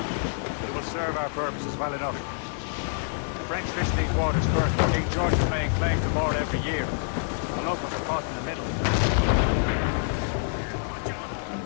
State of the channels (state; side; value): silent; right; 60 dB below the other